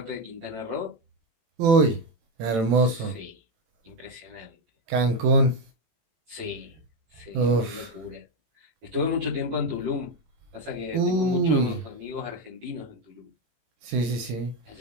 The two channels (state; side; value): late; left; 18 ms